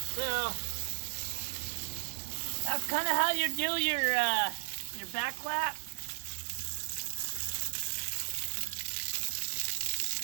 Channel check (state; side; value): silent; left; digital silence